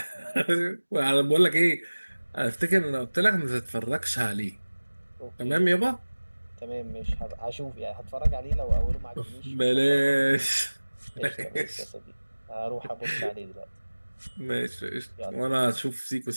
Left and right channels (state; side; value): inverted; both; correlation -1.00